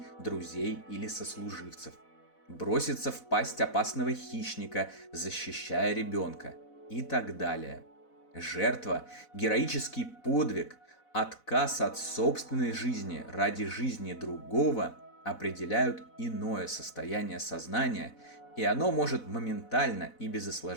друзей или сослуживцев, броситься в пасть опасного хищника, защищая ребенка и так далее. Жертва, героический подвиг, отказ от собственной жизни ради жизни другого определяют иное состояние сознания, и оно может моментально и без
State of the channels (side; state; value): right; late; 4.0 ms